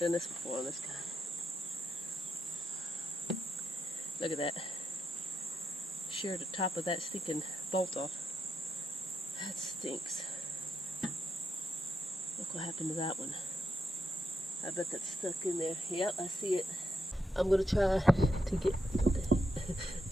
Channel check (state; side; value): normal; both; correlation 0.84